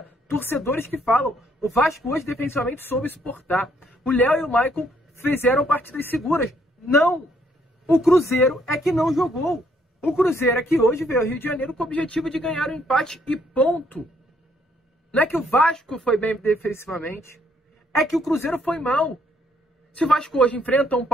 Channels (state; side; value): normal; both; correlation 0.69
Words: torcedores que falam, o Vasco hoje defensivamente soube suportar. O Léo e o Maicon fizeram partidas seguras. Não! O Cruzeiro é que não jogou. O Cruzeiro é que hoje veio ao Rio de Janeiro com o objetivo de ganhar o empate e ponto. Não é que o Vasco foi bem defensivamente. É que o Cruzeiro foi mal. Se o Vasco hoje enfrenta um